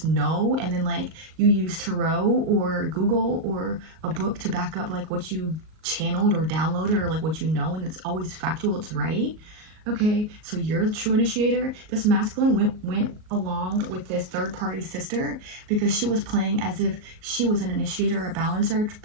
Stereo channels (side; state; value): left; late; 38 ms